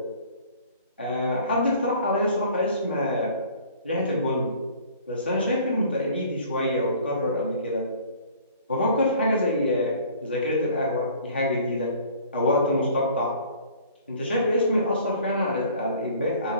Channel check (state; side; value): inverted; both; correlation -0.51